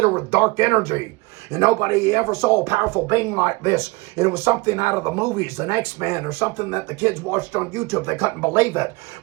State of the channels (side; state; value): left; quieter; 25.0 dB